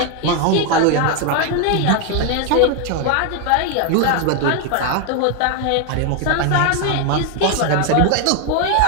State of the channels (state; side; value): different; both; correlation 0.01